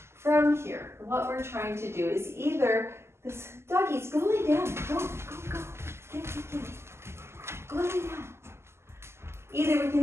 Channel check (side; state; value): left; late; 0.12 ms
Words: From here, what we're trying to do is either this doggies, go lay down. Go. Get. Go lay down. Either we